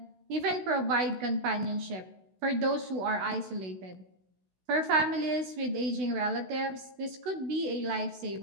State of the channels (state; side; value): late; left; 16 ms